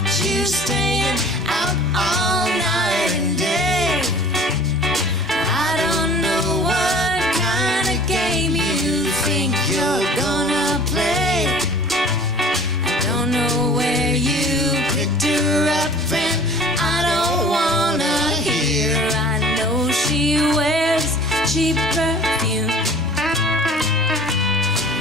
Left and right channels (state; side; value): normal; both; correlation 0.46